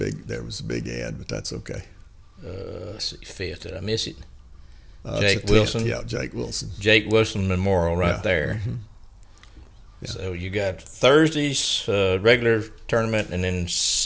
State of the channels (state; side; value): identical; both; correlation 1.00